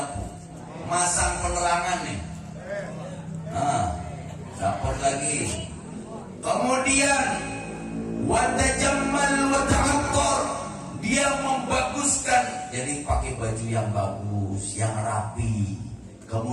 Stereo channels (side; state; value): both; identical; correlation 1.00